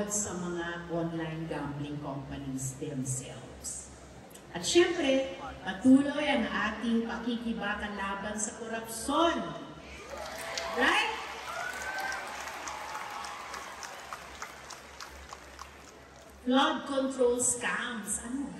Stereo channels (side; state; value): both; identical; correlation 1.00